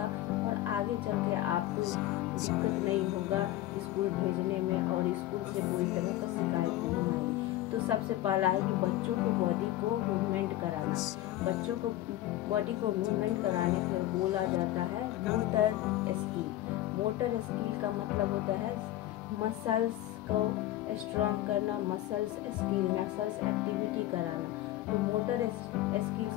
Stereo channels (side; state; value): right; quieter; 14.8 dB